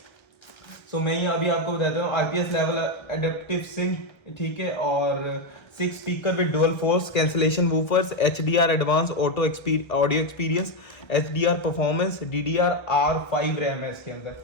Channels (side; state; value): right; late; 1.6 ms